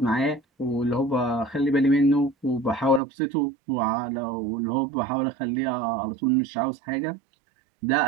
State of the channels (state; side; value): drops out; left; at 3.0 s